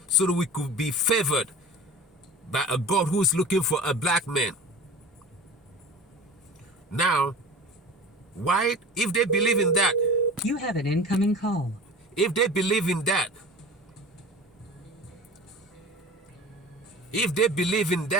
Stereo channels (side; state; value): both; normal; correlation 0.37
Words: so that we could be favored by a God who is looking for a black man. Now, why, if they believe in that? You have an incoming call. If they believe in that,